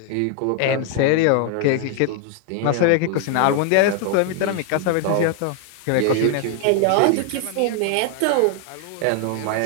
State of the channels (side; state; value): both; different; correlation 0.00